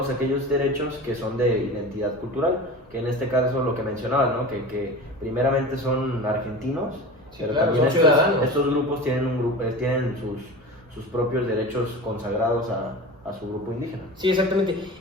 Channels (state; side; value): normal; both; correlation 0.32